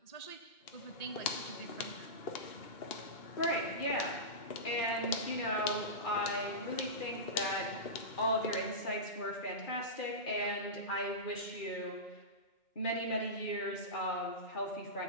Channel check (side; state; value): right; late; 2.2 ms